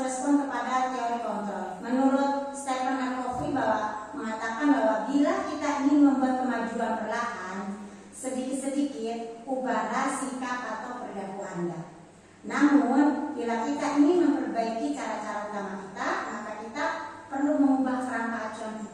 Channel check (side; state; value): both; identical; correlation 1.00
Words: respon kepada bila kita ingin memperbaiki cara-cara utama kita, maka kita perlu mengubah kerangka acuan